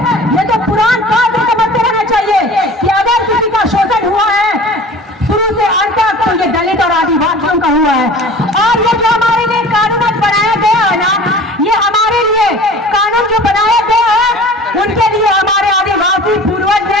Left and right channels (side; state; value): both; normal; correlation 0.42